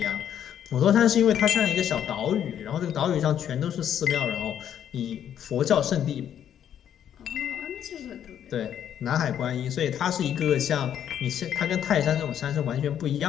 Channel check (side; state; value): right; quieter; 9.8 dB